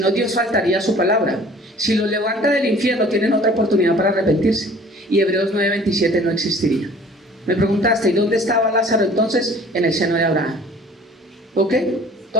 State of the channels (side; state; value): both; normal; correlation 0.49